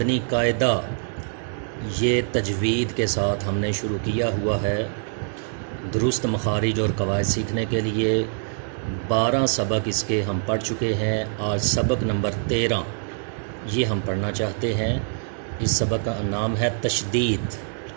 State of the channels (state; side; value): silent; left; 62 dB below the other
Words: قاعدہ یہ تجوید کے ساتھ ہم نے شروع کیا ہوا ہے۔ درست مخارج اور قواعد سیکھنے کے لیے 12 سبق اس کے ہم پڑھ چکے ہیں۔ آج سبق نمبر 13 یہ ہم پڑھنا چاہتے ہیں۔ اس سبق کا نام ہے تشدید۔